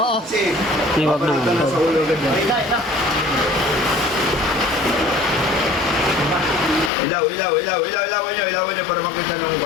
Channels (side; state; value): right; drops out; at 6.9 s